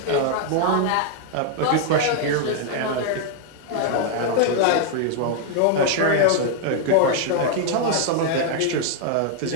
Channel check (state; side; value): different; both; correlation 0.00